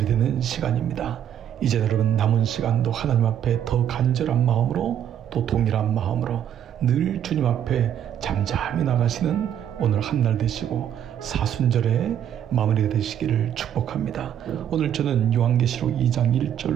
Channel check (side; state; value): left; quieter; 9.8 dB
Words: 시간입니다. 이제 여러분 남은 시간도 하나님 앞에 더 간절한 마음으로 또 동일한 마음으로 늘 주님 앞에 잠잠히 나가시는 오늘 한날 되시고 사순절에 마무리가 되시기를 축복합니다. 오늘 저는 요한계시록 2장